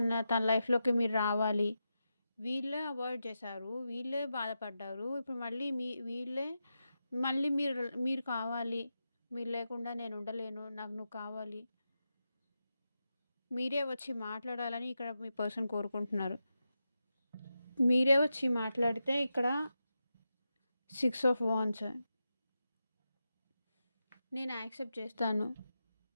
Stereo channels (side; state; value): both; inverted; correlation -0.89